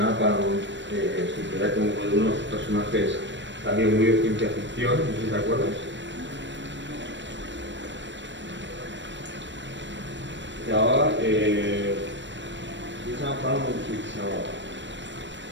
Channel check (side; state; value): left; late; 0.53 ms